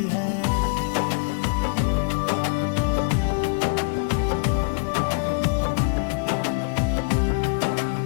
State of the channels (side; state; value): right; quieter; 35.5 dB